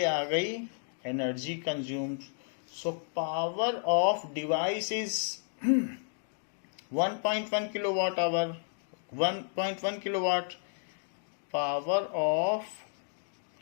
आ गई energy consumed. So power of device is 1.1 kilo watt hour, 1.1 kilo watt. Power of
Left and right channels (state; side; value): silent; right; digital silence